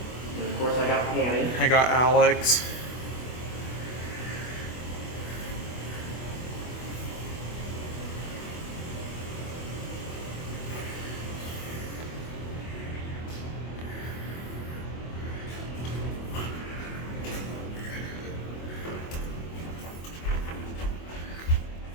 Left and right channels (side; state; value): right; late; 24 ms